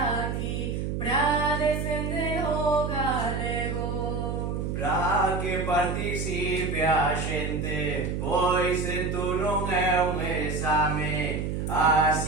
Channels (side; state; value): right; noise; hum, 2 dB below the sound